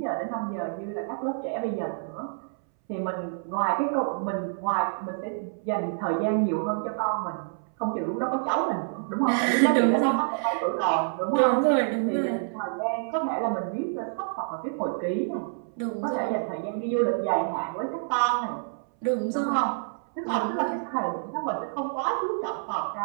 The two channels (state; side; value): silent; left; 60 dB below the other